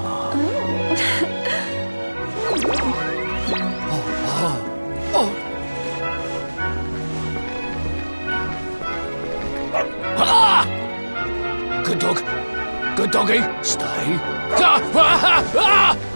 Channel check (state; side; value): inverted; both; correlation -1.00